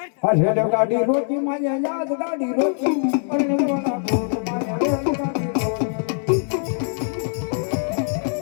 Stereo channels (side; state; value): right; silent; digital silence